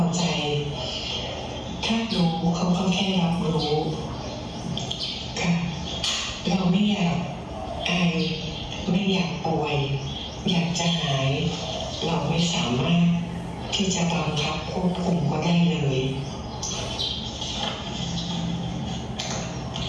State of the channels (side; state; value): both; identical; correlation 1.00